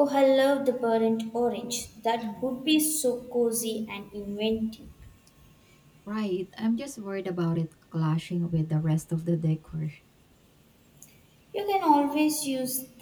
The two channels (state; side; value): identical; both; correlation 1.00